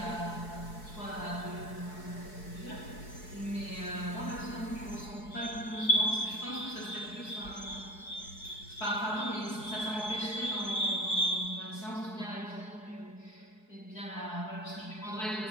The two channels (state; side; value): late; right; 4.7 ms